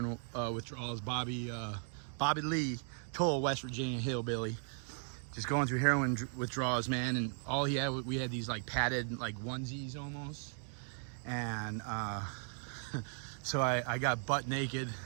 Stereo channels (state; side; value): silent; left; 53 dB below the other